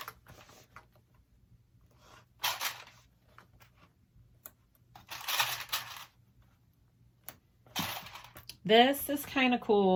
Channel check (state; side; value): identical; both; correlation 1.00